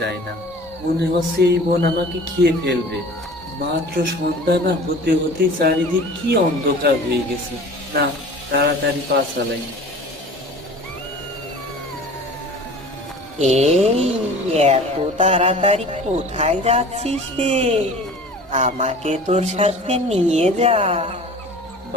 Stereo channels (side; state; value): both; normal; correlation 0.42